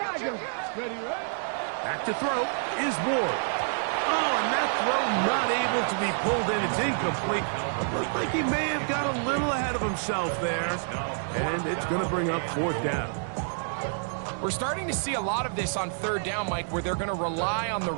Ready. Back to throw is Ward. Oh, and that throw not able to be pulled in. It's incomplete. Looks like he may have got a little ahead of himself there. And it's going to bring up 4th down. We're starting to see a lot of this on 3rd down, Mike, where they're going to rely on the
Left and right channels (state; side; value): silent; left; digital silence